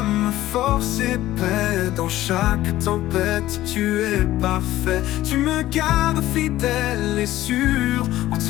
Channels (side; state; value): right; quieter; 15.0 dB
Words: force et paix. Dans chaque tempête, tu es parfait. Tu me gardes fidèle et sûr. En